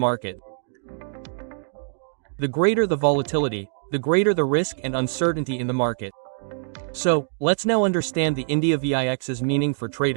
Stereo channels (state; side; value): silent; left; digital silence